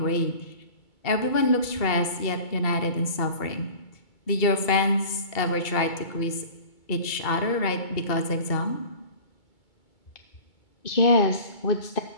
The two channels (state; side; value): late; right; 2.2 ms